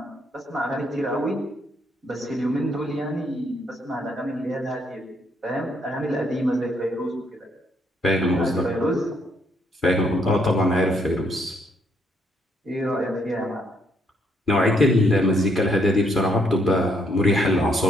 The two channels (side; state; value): both; normal; correlation 0.72